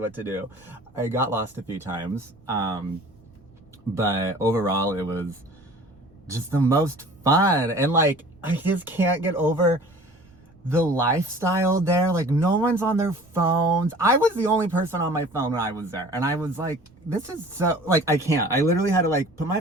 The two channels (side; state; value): right; noise; rumble, 29 dB below the sound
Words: to do. I got lost a few times, but overall it was just the most fun. And like, I just can't get over the lifestyle there. Like no one's on their phones. I was the only person on my phone when I was there, and I was like, this is so like, I can't. I literally had to like put my